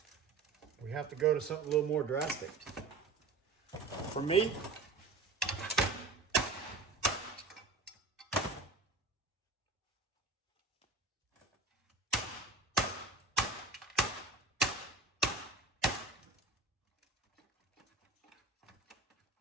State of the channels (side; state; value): left; quieter; 3.7 dB